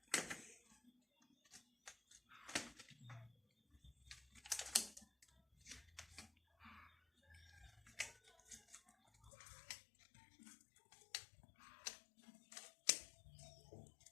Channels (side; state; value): right; drops out; at 9.3 s